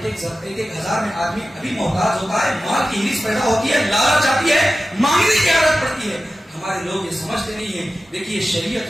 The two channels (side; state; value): both; normal; correlation 0.94